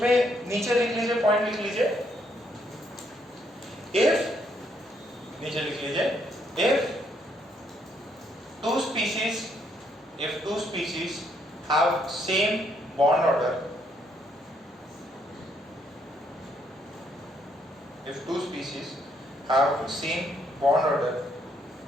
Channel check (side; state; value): both; normal; correlation 0.72